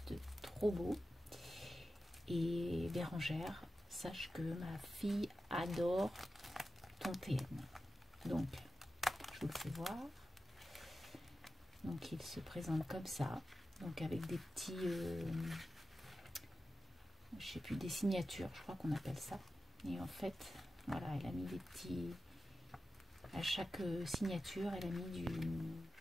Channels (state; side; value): normal; both; correlation 0.92